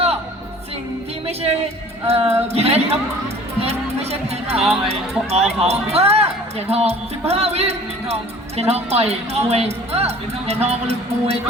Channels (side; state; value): both; normal; correlation 0.48